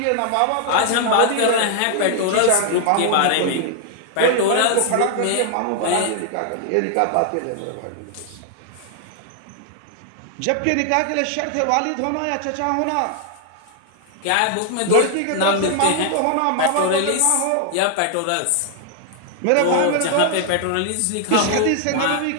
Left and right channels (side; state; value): both; different; correlation 0.00